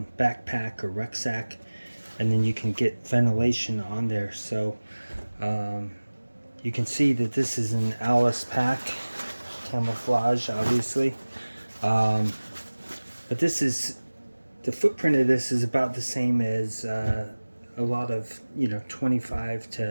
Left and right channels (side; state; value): both; inverted; correlation -1.00